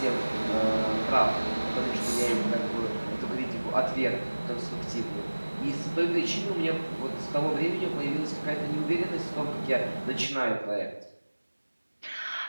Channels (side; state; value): both; inverted; correlation -1.00